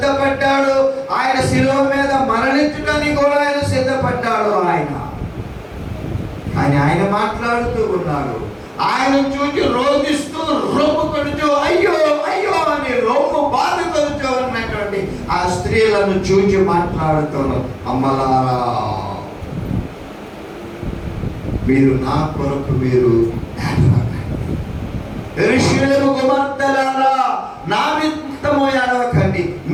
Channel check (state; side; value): identical; both; correlation 1.00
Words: ఆయన శిలువ మీద మరణించడానికి కూడా ఆయన సిద్ధపడ్డాడు. ఆయన మాట్లాడుతూ ఉన్నాడు. ఆయన చూచి రోధిస్తూ రొమ్ము కొడుచు అయ్యో అయ్యో అని రొమ్ము బాధ కొడుచు ఉన్నటువంటి ఆ స్త్రీలను చూచి మాట్లాడుతున్నాడు, అమ్మలారా మీరు నా కొరకు మీరు యెరూషలేము కుమార్తెలారా నా నిమిత్తము ఏడవకండి,